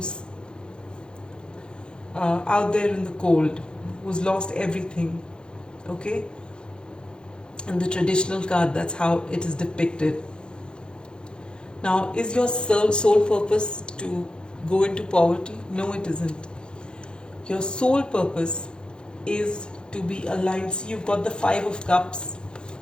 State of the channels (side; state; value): right; late; 0.049 ms